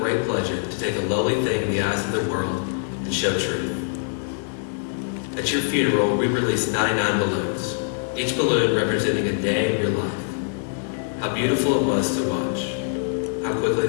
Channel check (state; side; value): silent; right; digital silence